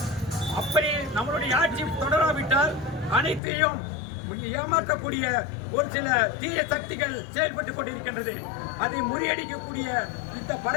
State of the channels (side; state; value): right; drops out; at 3.4 s